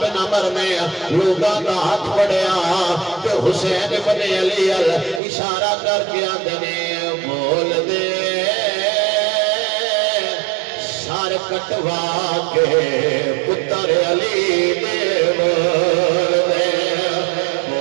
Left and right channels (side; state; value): left; drops out; at 5.2 s